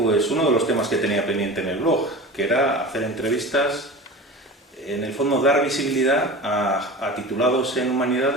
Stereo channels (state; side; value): normal; both; correlation 0.33